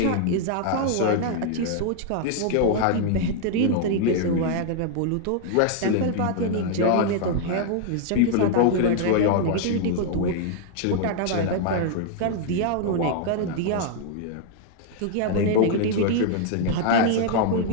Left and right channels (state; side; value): different; both; correlation 0.00